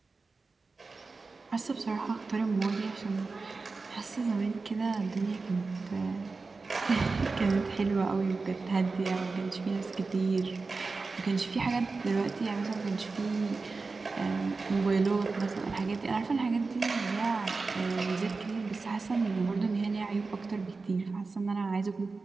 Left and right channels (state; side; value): quieter; left; 4.0 dB